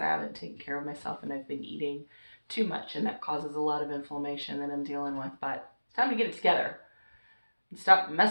haven't taken care of myself and I've been eating too much, and that causes a lot of inflammation that I'm dealing with. But it's time to get it together and stop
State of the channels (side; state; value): both; inverted; correlation -1.00